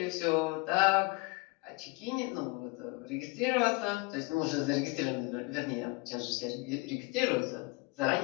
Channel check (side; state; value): right; quieter; 26.4 dB